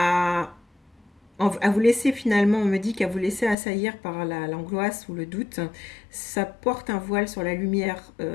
à vous laisser finalement, on me dit qu'à vous laisser assaillir par l'angoisse ou le doute, ça porte un voile sur la lumière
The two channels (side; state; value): right; drops out; at 3.6 s